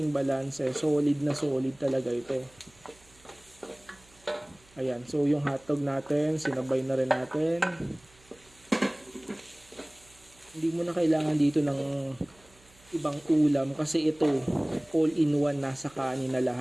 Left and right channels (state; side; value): noise; right; hum, 28 dB below the sound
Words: balance, solid na solid talaga ito. Ayan, so yung hotdog natin sinabay na rin natin. Hindi mo na kailangan dito ng ibang ulam kasi ito all in one, nasa kanin na